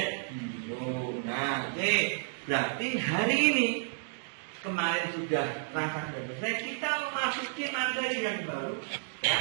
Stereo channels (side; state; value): left; silent; digital silence